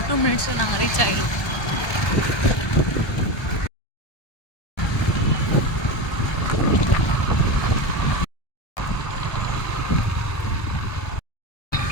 2 minutes நாங்கள் ரீச் ஆகிடுவோம்.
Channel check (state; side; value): late; right; 1.3 ms